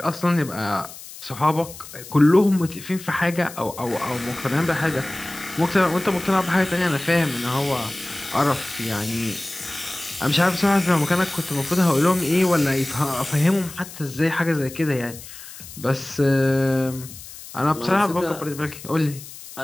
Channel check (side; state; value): left; noise; hiss, 15 dB below the sound